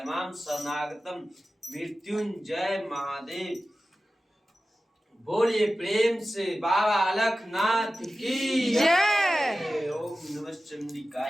शरणागतम मृत्युंजय महादेव। बोलिए प्रेम से बाबा अलखनाथ की जय। ओम नमः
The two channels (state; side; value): normal; both; correlation 0.95